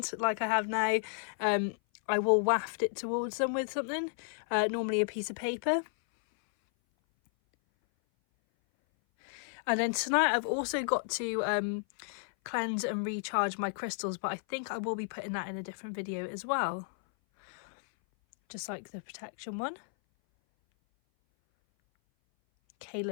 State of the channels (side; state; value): right; silent; 56 dB below the other